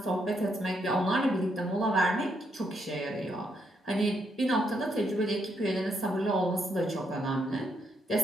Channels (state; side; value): normal; both; correlation 0.76